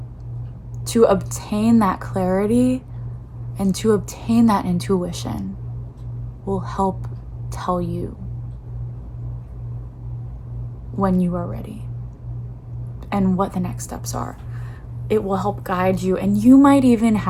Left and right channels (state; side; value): identical; both; correlation 1.00